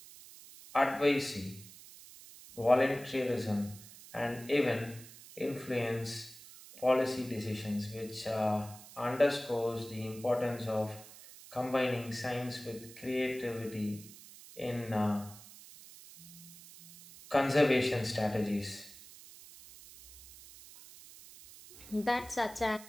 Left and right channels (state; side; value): noise; right; hiss, 18 dB below the sound